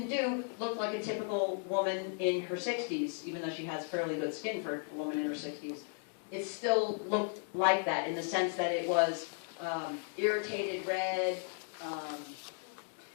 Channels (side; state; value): right; silent; 54 dB below the other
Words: do looked like a typical woman in her 60s, even though she has fairly good skin for a woman in her 60s. It still looked like that in the sense that it was irritated red,